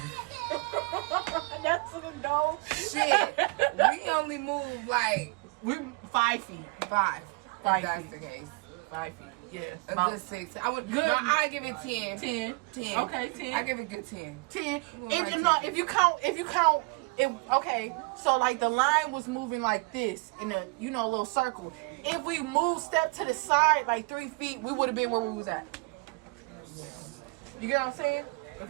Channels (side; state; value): left; quieter; 28.8 dB